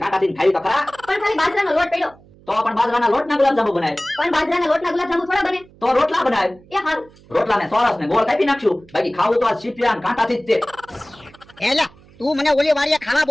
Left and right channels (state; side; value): noise; right; hum, 26 dB below the sound